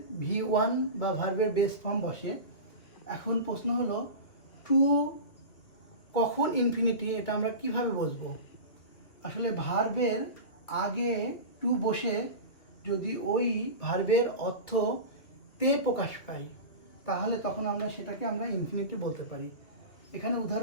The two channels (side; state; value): right; late; 2.8 ms